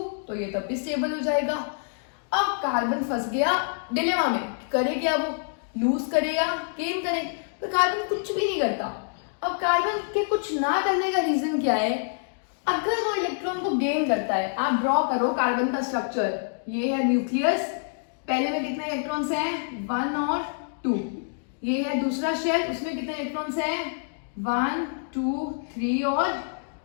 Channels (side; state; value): right; silent; digital silence